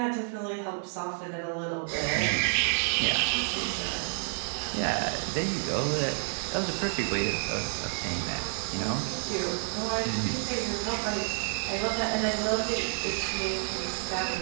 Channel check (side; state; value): left; silent; digital silence